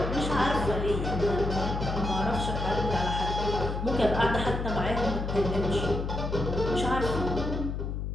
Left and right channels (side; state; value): left; noise; hum, 3 dB below the sound